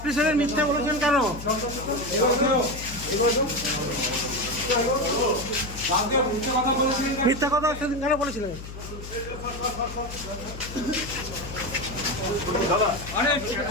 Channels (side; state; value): left; noise; hum, 11 dB below the sound